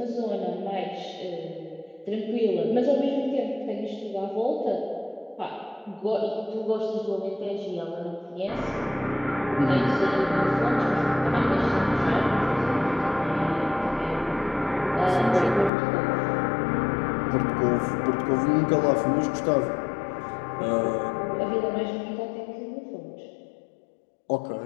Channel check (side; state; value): right; drops out; at 15.7 s